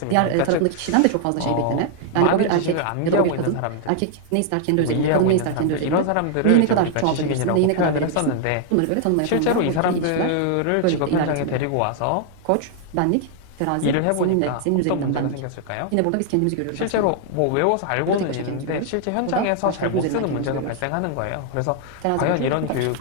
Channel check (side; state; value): both; different; correlation 0.00